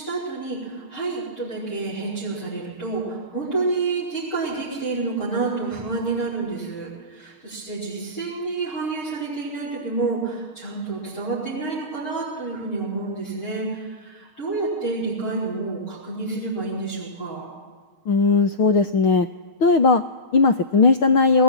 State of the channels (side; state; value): right; late; 6.5 ms